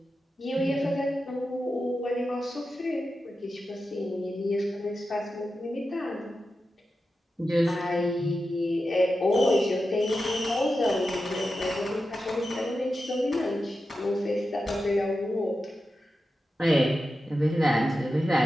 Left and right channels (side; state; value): both; normal; correlation 0.91